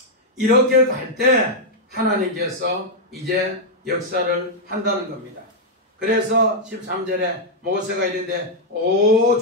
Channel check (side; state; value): both; normal; correlation -0.03